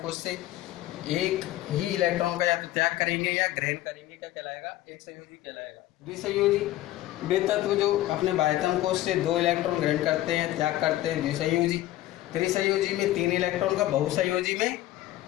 कोश से एक ही इलेक्ट्रॉन का या तो त्याग करेंगे या ग्रहण करेंगे, क्या कहलाएगा? एक संयोजी कहलाएगा। द्विसंयोजी, वे तत्व जो अपने बाह्यतम कोश से 2 इलेक्ट्रॉन ग्रहण करते हैं, त्याग करते हैं, द्विसंयोजी। त्रिसंयोजी में 3 इलेक्ट्रॉन का, बहुसंयोजी में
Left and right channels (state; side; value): quieter; right; 15.2 dB